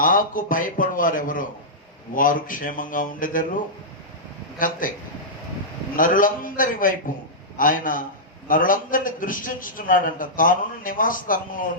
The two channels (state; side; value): normal; both; correlation -0.12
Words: భయపడు వారెవరో వారు క్షేమంగా ఉండేదరు. ఇంకంతే. నరులందరి వైపు ఆయన నరులందరినీ దృష్టించుతున్నాడంట. తానున్న నివాస స్థలంలో